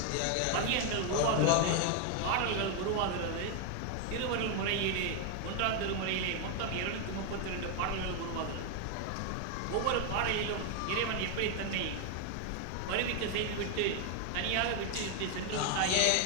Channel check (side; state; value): both; different; correlation 0.01